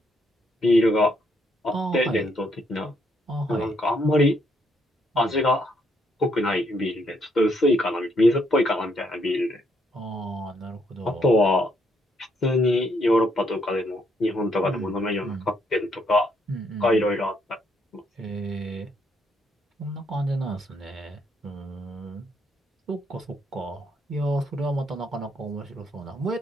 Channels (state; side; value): normal; both; correlation 0.73